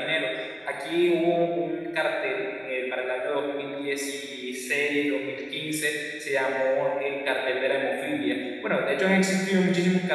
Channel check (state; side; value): identical; both; correlation 1.00